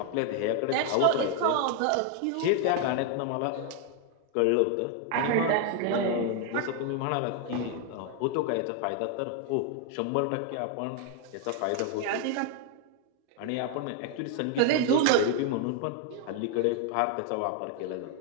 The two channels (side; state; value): both; different; correlation 0.00